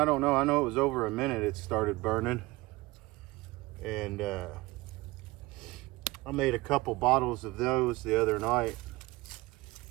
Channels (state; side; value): quieter; left; 20.9 dB